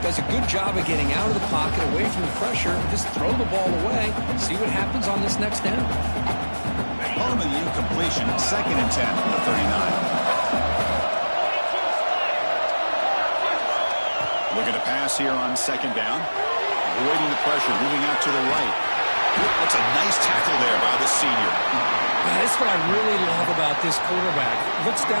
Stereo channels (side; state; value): both; inverted; correlation -1.00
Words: a good job of getting out of the pocket, away from the pressure, and just throw the ball away. See what happens on this next down. Home of the incompletion, 2nd and 10 from the 39. Looking to pass here on 2nd down. Avoiding the pressure, moving out to the right. That's a nice tackle there by the senior. Yeah, that's what I really love about this quarterback. Looks